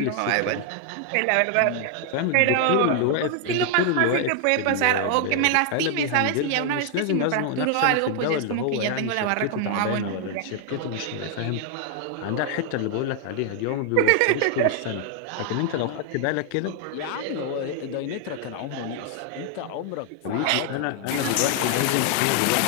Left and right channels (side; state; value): both; different; correlation 0.00